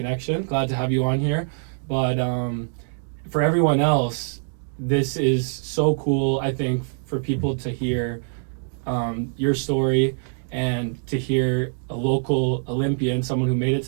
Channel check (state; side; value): silent; left; digital silence